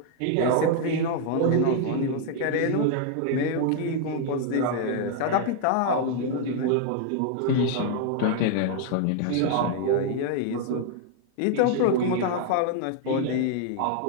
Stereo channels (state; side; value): different; both; correlation 0.00